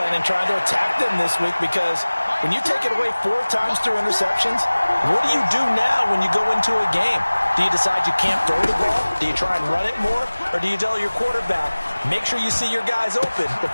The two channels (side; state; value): both; inverted; correlation -1.00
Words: and trying to attack them this week, because when you take it away 4 times through interceptions, what do you do now when you go into a game? Do you decide you can't throw the ball? Do you try and run it more? Or do you tell your quarterback, make sure you see your guys open